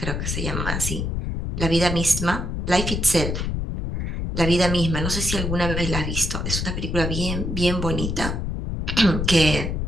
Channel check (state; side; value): noise; left; rumble, 2 dB below the sound